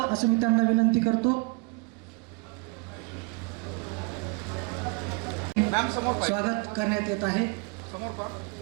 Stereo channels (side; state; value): left; quieter; 31.8 dB